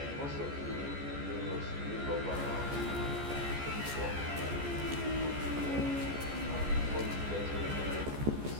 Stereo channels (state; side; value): late; left; 14 ms